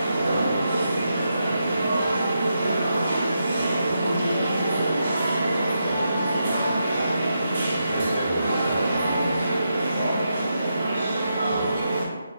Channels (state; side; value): inverted; both; correlation -0.84